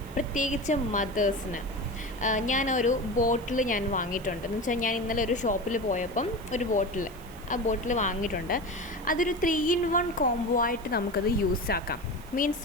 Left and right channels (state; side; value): noise; right; hiss, 22 dB below the sound